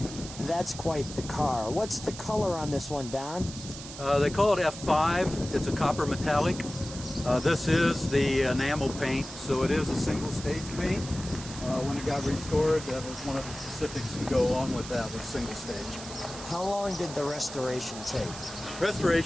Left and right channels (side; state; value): right; noise; hiss, 12 dB below the sound